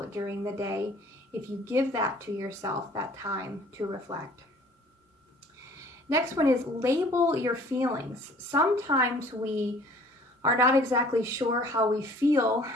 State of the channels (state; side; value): normal; both; correlation 0.53